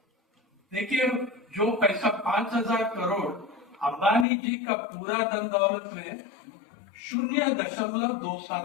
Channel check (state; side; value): drops out; right; at 4.2 s